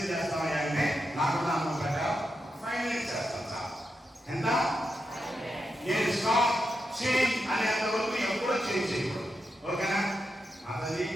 చేస్తామని అంటే నాకు అనుభవం ప్రకారం 5 మినిట్స్ చేస్తాం సార్. ఎంత? నేను స్టాప్ చేంజ్ అనేంత వరకు ఎప్పుడో చేంజ్ చేయకూడదు. ఓకేనా? అతది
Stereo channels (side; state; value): both; normal; correlation 0.86